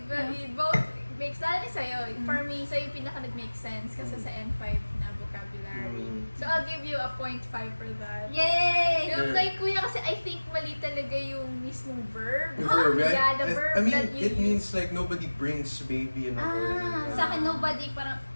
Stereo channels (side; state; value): both; inverted; correlation -1.00